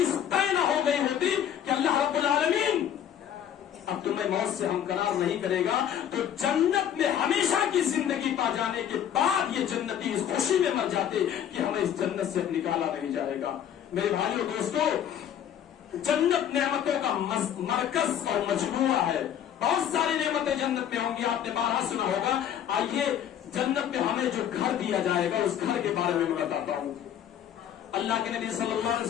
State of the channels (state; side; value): quieter; right; 9.9 dB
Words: طے نہ ہو گئی ہوتی کہ اللہ رب العالمین اب تمہیں موت سے ہمکنار نہیں کرے گا تو جنت میں ہمیشہ کی زندگی پا جانے کے بعد یہ جنتی اس خوشی میں مر جاتے کہ ہمیں اس جنت سے نکالا نہیں جائے گا. میرے بھائیوں دوستوں, جنت نعمتوں کا مرکز اور مجموعہ ہے. بہت ساری نعمتیں جنت میں ہوں گی, آپ نے بارہا سنا ہوگا. آئیے جنت میں ہمیں جو گھر دیا جائے گا اس گھر کے بارے میں بتاتا ہوں. اللہ کے نبی صلی اللہ علیہ